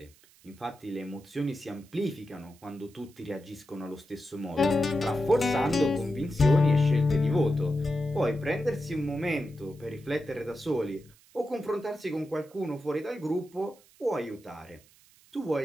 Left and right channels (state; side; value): noise; right; hiss, 28 dB below the sound